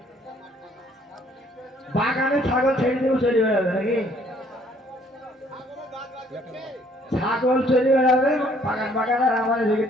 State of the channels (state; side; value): normal; both; correlation 0.62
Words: বাগানে ছাগল ছেড়ে দেবো চলে বেড়াবে নাকি ছাগল চলে বেড়াবে বাগান বাগান আর আমার দিকে